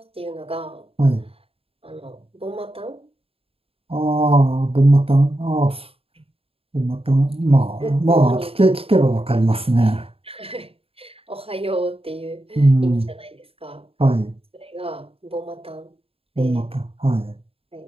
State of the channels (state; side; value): late; left; 0.28 ms